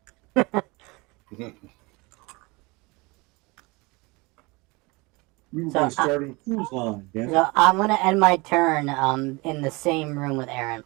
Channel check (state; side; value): quieter; left; 25.6 dB